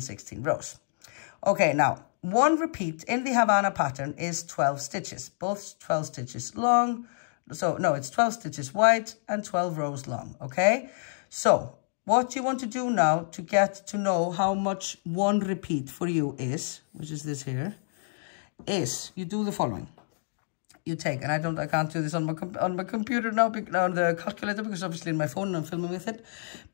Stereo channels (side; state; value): right; silent; digital silence